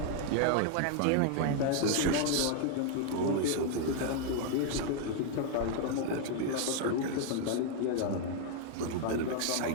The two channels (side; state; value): both; different; correlation 0.00